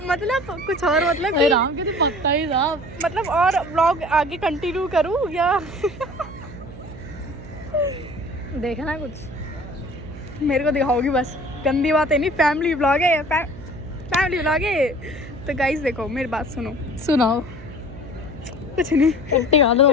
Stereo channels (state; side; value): noise; right; hum, 15 dB below the sound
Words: कुछ और, मतलब कि राम के तो पक्का ही साहब, मतलब और ब्लॉग आगे कंटिन्यू करूँ या देखना कुछ मेरे को दिखाओगी बस? गंदी बात है नहीं, फैमिली ब्लॉग है, फैमिली ब्लॉग है। तो गाइस देखो मेरी बात सुनाओ। कुछ नहीं, पट्टी गालो